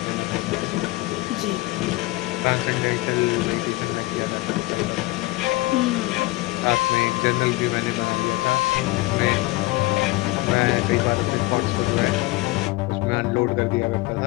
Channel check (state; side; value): quieter; right; 20.2 dB